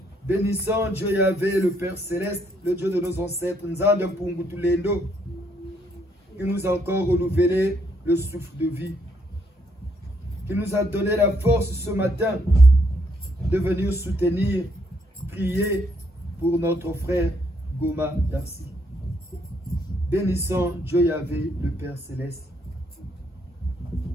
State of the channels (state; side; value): normal; both; correlation 0.72